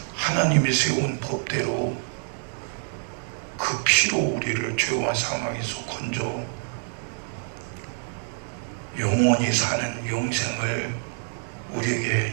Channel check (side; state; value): left; silent; 61 dB below the other